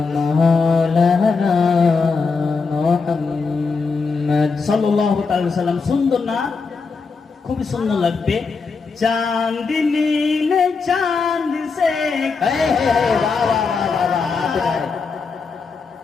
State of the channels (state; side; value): quieter; right; 4.7 dB